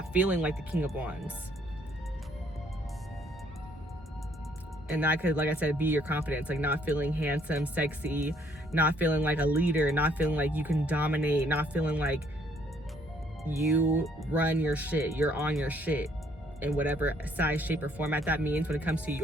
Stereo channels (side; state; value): both; normal; correlation 0.65